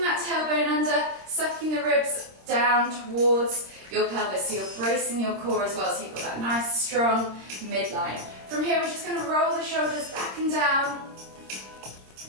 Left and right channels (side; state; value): left; late; 26 ms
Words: that tailbone under, sucking the ribs down towards your pelvis. So you're bracing your core as well, so you've got that nice strong midline. From here, we're just going to roll the shoulders back and down,